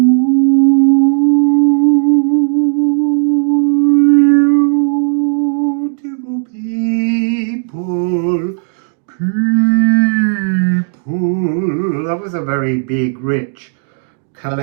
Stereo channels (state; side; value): silent; left; digital silence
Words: people, people. That was a very big, rich,